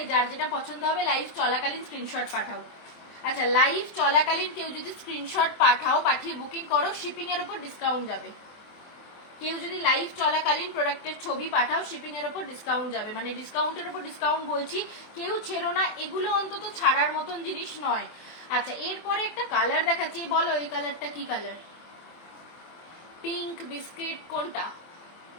যার যেটা পছন্দ হবে লাইভ চলাকালীন স্ক্রিনশট পাঠাও। আচ্ছা, লাইভ চলাকালীন কেউ যদি স্ক্রিনশট পাঠাও, পাঠিয়ে বুকিং করো, শিপিং এর উপর ডিসকাউন্ট যাবে। কেউ যদি লাইভ চলাকালীন প্রোডাক্টের ছবি পাঠাও, শিপিং এর উপর ডিসকাউন্ট যাবে। মানে ডিসকাউন্টের উপর ডিসকাউন্ট বলছি, কেউ ছেড়ো না, এগুলো অন্তত ছাড়ার মতন জিনিস নয়। আচ্ছা, এরপরে একটা কালার দেখাচ্ছি, বলো এই কালারটা কি কালার? পিঙ্ক বিস্কিট কোনটা?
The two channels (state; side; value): late; right; 24 ms